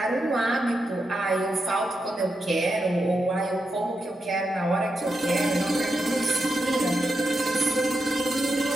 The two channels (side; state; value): both; normal; correlation 0.86